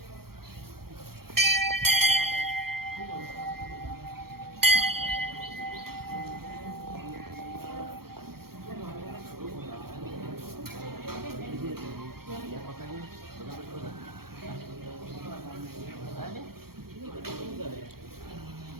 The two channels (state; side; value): late; left; 0.94 ms